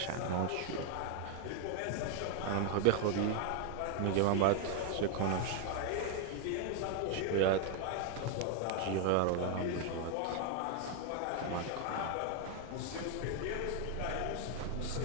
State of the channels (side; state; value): both; different; correlation 0.00